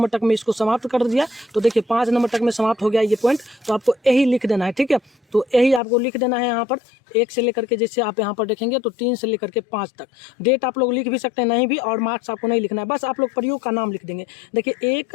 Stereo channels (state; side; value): drops out; right; at 5.8 s